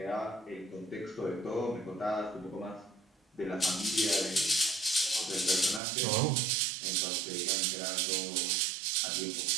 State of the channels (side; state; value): left; drops out; at 5.8 s